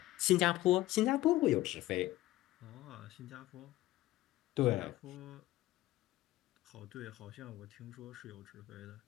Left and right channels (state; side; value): quieter; right; 16.3 dB